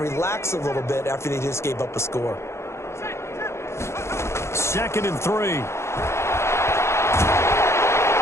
a little bit after they just gave up a score. 2nd and 3.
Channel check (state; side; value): late; right; 0.13 ms